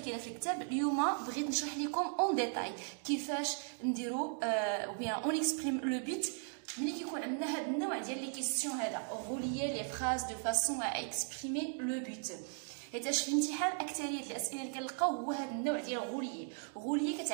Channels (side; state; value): left; silent; 53 dB below the other